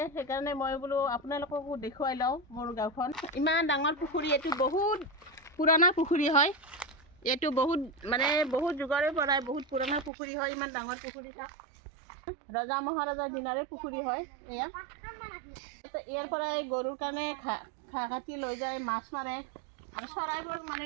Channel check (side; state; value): left; drops out; at 10.1 s